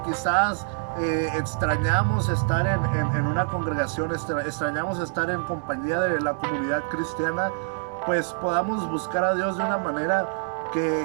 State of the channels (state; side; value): silent; left; 61 dB below the other